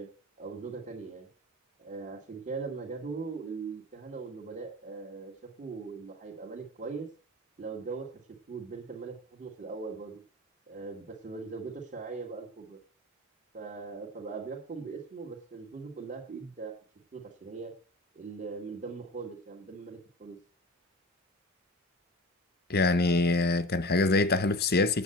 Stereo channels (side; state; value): both; normal; correlation 0.35